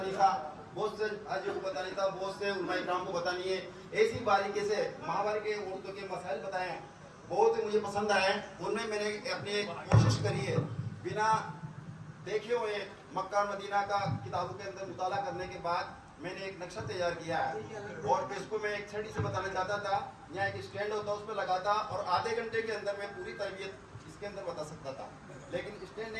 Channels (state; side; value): identical; both; correlation 1.00